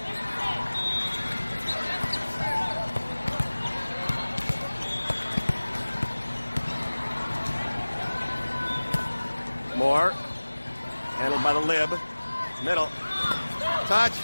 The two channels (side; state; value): both; inverted; correlation -1.00